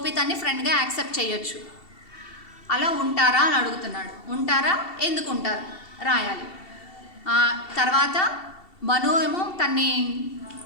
తన్ని ఫ్రెండ్గా యాక్సెప్ట్ చేయొచ్చు. అలా ఉంటారా అని అడుగుతున్నాడు. ఉంటారా, ఎందుకు ఉంటారు రాయాలి. తర్వాత మను ఏమో తన్ని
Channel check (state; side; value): late; right; 2.7 ms